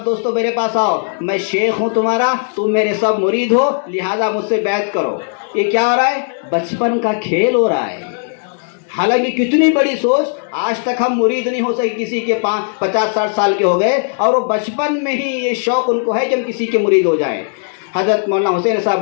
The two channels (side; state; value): right; silent; digital silence